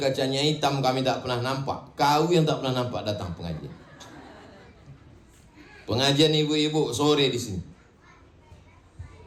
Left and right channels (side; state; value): both; identical; correlation 1.00